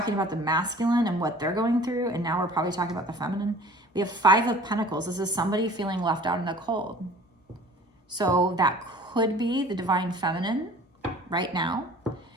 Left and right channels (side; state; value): both; normal; correlation 0.48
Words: about the masculine and what they're going through, and now we're probably talking about the feminine. We have 5 of Pentacles. This is somebody feeling left out in the cold. So that could be the Divine Feminine right now.